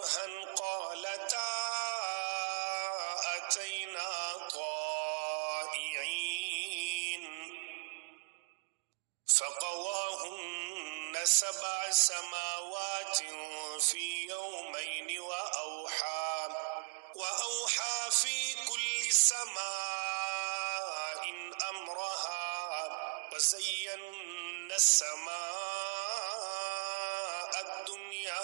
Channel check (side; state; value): left; silent; digital silence